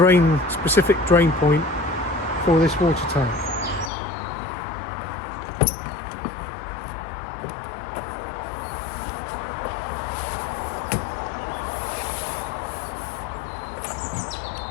specific drain point for this water tank.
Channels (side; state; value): right; drops out; at 3.9 s